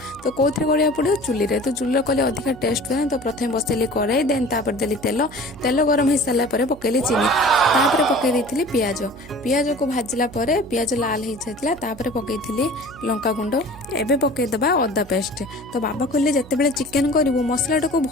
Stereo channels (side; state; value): right; noise; hum, 19 dB below the sound